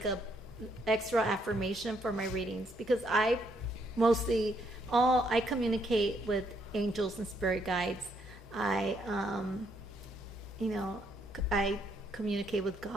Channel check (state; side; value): normal; both; correlation 0.73